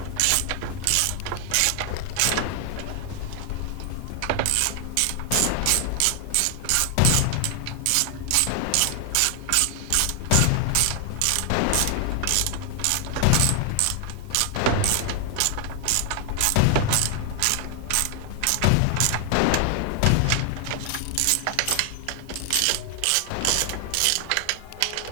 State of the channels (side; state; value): both; different; correlation 0.00